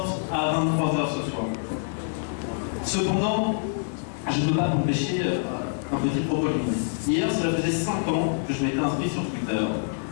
à 23 h ce soir. Cependant, je ne peux pas m'empêcher un petit propos lumineux. Hier, cela faisait 5 ans que je m'étais inscrit sur Twitter.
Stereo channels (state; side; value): silent; right; digital silence